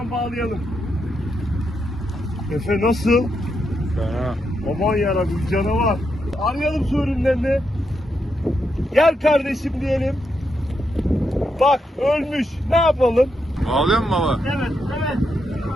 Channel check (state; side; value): normal; both; correlation 0.82